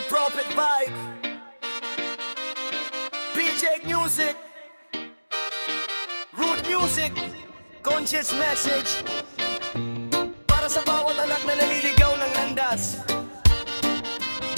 Prophet Vibe, PJ Music, Root Music, Conscious Message. Para sa bawat anak na naliligaw ng landas,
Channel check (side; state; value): both; inverted; correlation -1.00